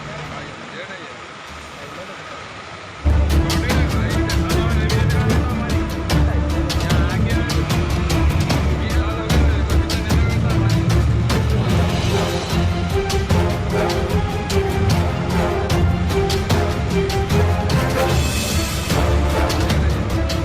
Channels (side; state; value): both; identical; correlation 1.00